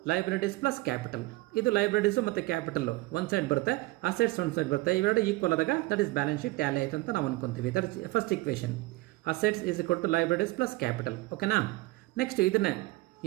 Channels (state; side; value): quieter; left; 21.1 dB